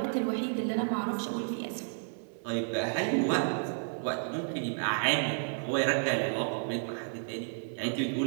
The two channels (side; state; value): left; silent; 57 dB below the other